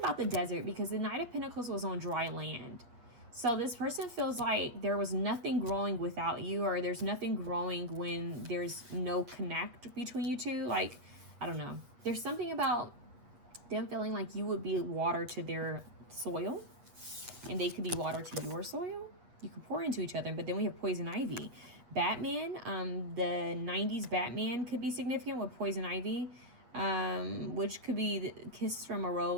the desert because the Knight of Pentacles was on dry land. So this person feels like there was nothing growing without you, or there's nothing growing when there's no connect between you two. Like, I don't know. There's something about them feeling like you would be water to their soil and they could be water to your soil. You could pour into each other, but then we have Poison Ivy. Batman, the 90s Batman could be significant with Poison Ivy. Which could be the Kiss from a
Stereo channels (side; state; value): left; late; 8.3 ms